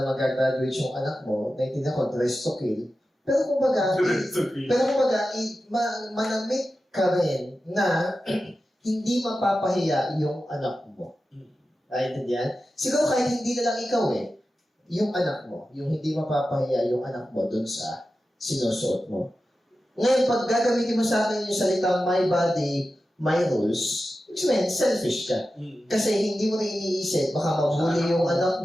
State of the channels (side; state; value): both; normal; correlation 0.93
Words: mag-graduate yung anak mo, naintindihan ko, dress to kill. Pero kumbaga, manamit ka rin na hindi mapapahiya yung anak mo. Naintindihan? Siguro kahit hindi na lang ikaw yung anak mo, yung hindi mapapahiya yung anak mo dun sa sinusuot mo. Ngayon, pag gagamitin mo sa akin yung salitang my body, my rules, which means selfish ka. Kasi hindi mo na iniisip, baka mabuli yung anak